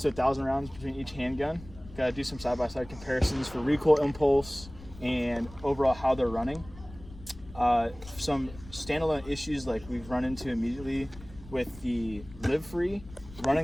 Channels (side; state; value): left; noise; rumble, 17 dB below the sound